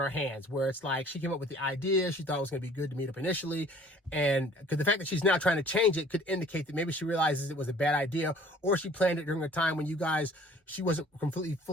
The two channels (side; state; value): both; normal; correlation 0.53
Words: hands where it's like she came up with the idea. She thought it was going to be good to meet up initially. And because the fact that she's now trying to change it could indicate that maybe she realizes it was a bad idea, or she planned it during a time when she wasn't completely